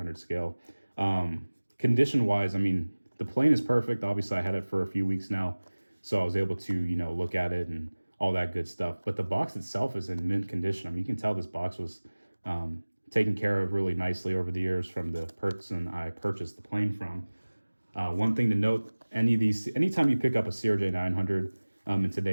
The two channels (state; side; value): inverted; both; correlation -1.00